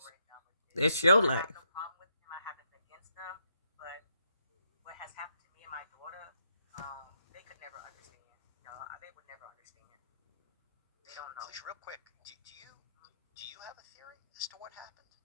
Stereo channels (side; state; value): both; inverted; correlation -0.77